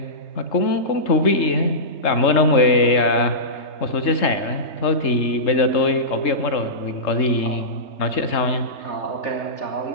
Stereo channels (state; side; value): late; right; 3.7 ms